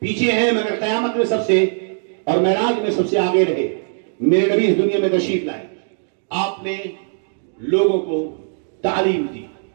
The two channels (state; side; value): silent; left; digital silence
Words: پیچھے ہیں مگر قیامت میں سب سے اور معراج میں سب سے آگے رہے میرے نبی اس دنیا میں تشریف لائے آپ نے لوگوں کو تعلیم دی